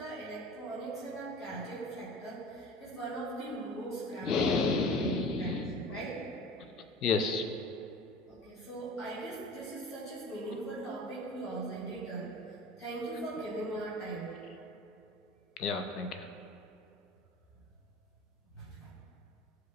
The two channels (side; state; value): both; normal; correlation 0.39